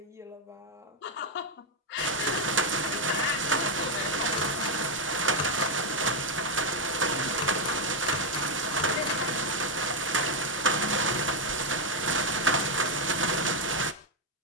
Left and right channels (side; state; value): both; normal; correlation 0.03